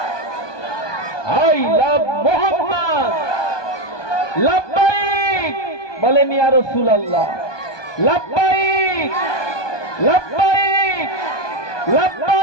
I love Muhammad. লব্বাইক বলেন ইয়া রাসূলুল্লাহ। লব্বাইক লব্বাইক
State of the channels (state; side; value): late; right; 1.2 ms